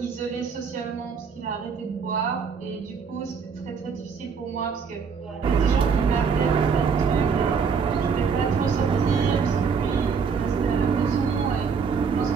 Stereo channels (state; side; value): quieter; left; 5.9 dB